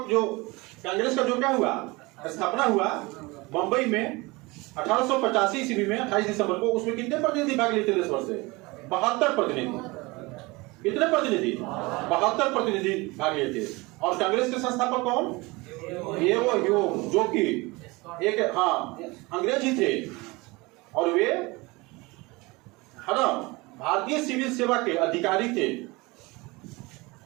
जो कांग्रेस का जो क्या हुआ, स्थापना हुआ बंबई में 1885 ईस्वी में 28 दिसंबर को, उसमें कितने प्रतिनिधि भाग लिए थे देश भर से? 72 प्रतिनिधि। कितने प्रतिनिधि? 72 प्रतिनिधि भाग लिए थे। और कांग्रेस के संस्थापक कौन? ये वो ह्यूम, जो कि एक अंग्रेज ही थे और वे है ना भारतीय सिविल सेवा के अधिकारी थे,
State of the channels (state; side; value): quieter; left; 23.9 dB